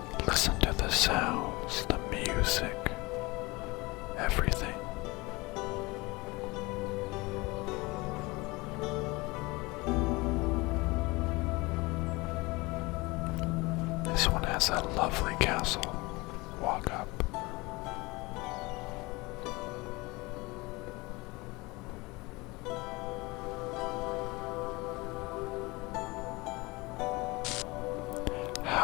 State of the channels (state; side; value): quieter; right; 23.6 dB